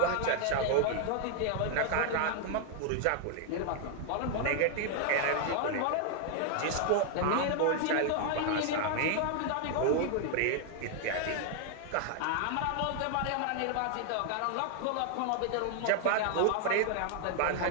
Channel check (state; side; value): different; both; correlation 0.00